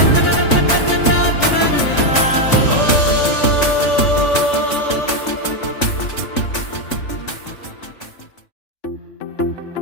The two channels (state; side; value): late; right; 3.5 ms